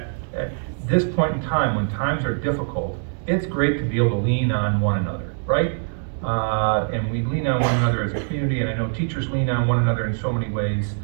this point in time, when times are difficult, it's great to be able to lean on one another, right? And we lean on one another as a community, and I know teachers lean on one another in so many ways.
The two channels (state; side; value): silent; left; 61 dB below the other